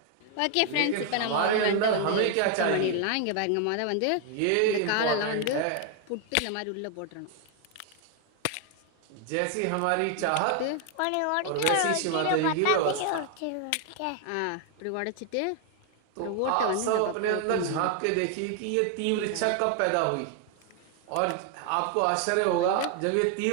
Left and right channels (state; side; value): different; both; correlation 0.00